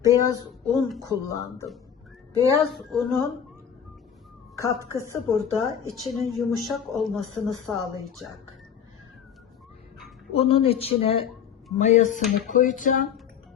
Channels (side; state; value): right; quieter; 8.2 dB